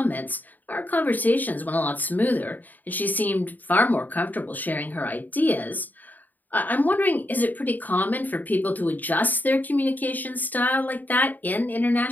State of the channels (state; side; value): late; right; 0.085 ms